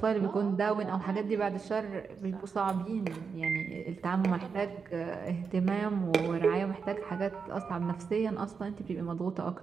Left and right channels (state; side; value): quieter; left; 5.6 dB